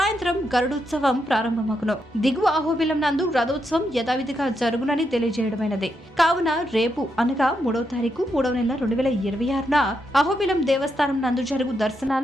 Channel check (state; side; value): normal; both; correlation 0.82